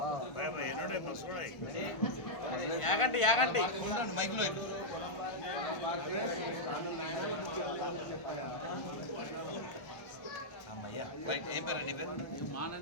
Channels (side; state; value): right; late; 1.5 ms